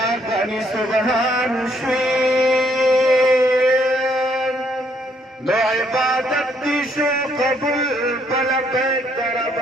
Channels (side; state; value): both; normal; correlation 0.70